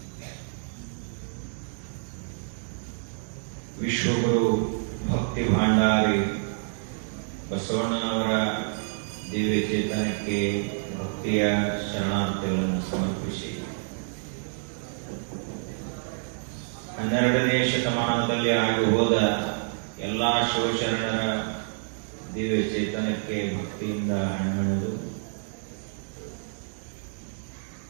ವಿಶ್ವಗುರು ಭಕ್ತಿ ಭಾಂಡಾರಿ ಬಸವಣ್ಣನವರ ದಿವ್ಯ ಚೇತನಕ್ಕೆ ಭಕ್ತಿಯ ಶರಣಾರ್ಥಿಗಳನ್ನು ಸಮರ್ಪಿಸಿ 12ನೇ ಶತಮಾನದಲ್ಲಿ ಆಗಿ ಹೋದ ಎಲ್ಲಾ ಶಿವಶರಣರ ದಿವ್ಯ ಚೇತನಕ್ಕೆ ಭಕ್ತಿಯಿಂದ ಹಣ್ಣೆಳೆದು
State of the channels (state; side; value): silent; left; digital silence